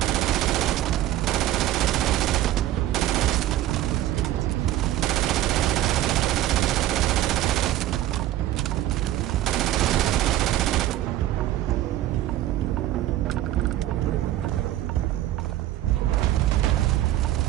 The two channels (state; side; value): quieter; left; 13.9 dB